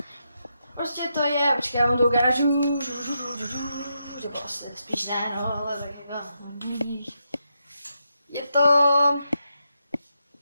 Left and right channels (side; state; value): both; inverted; correlation -0.83